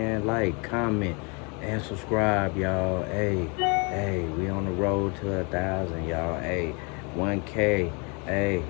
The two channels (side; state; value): right; quieter; 32.3 dB